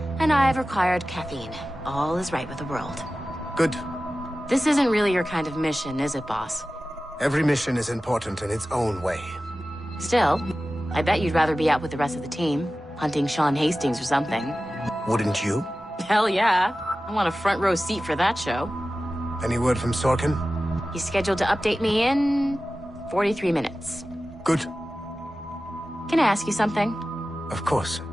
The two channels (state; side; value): normal; both; correlation 0.95